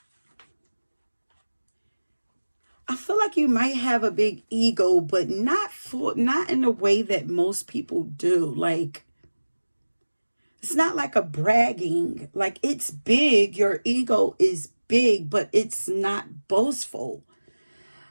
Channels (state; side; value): inverted; both; correlation -1.00